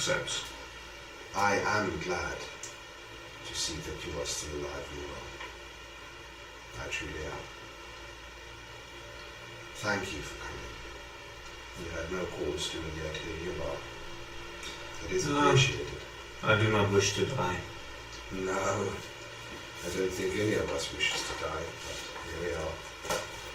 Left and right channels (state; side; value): identical; both; correlation 1.00